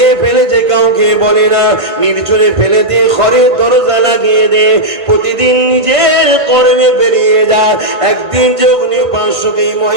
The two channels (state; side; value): late; left; 1.5 ms